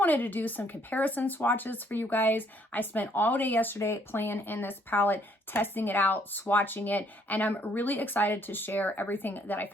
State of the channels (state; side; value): normal; both; correlation 0.66